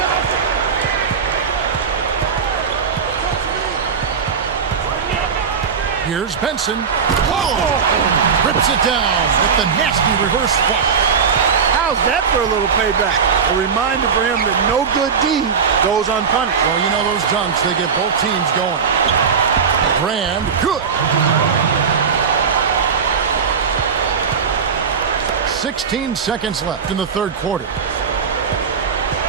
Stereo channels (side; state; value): left; quieter; 6.2 dB